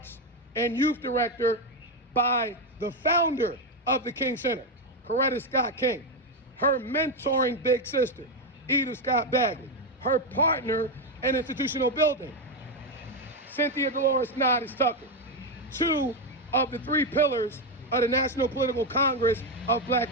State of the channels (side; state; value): both; normal; correlation 0.07